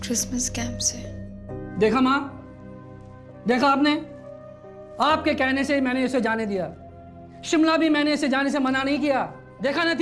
क्रिसमस कैंप से। देखा माँ, देखा आपने, आपके कहने से ही मैंने इसे जाने दिया। शिमला भी मैंने इसे जाने से मना नहीं किया। देखा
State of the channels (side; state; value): both; identical; correlation 1.00